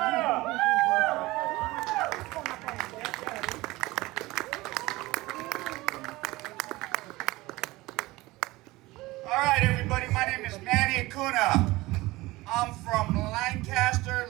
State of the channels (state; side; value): quieter; left; 20.0 dB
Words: up. All right, everybody. My name is Manny Acuna. I'm from Lancaster,